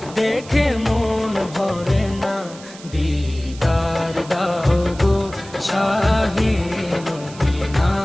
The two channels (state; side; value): noise; right; hiss, 18 dB below the sound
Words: দেখে মন ভরে না। দিদার দাও গো শাহে মদিনা,